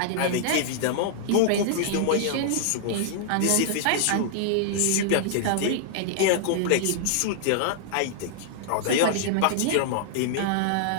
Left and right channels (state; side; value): different; both; correlation -0.01